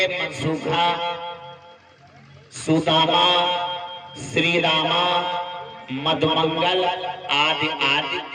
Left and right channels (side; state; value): both; identical; correlation 1.00